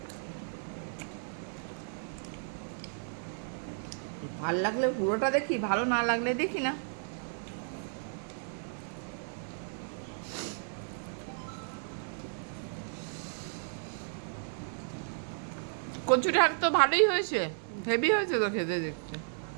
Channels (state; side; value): silent; left; digital silence